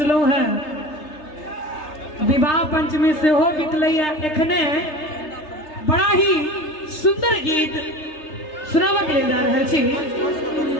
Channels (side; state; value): right; late; 3.3 ms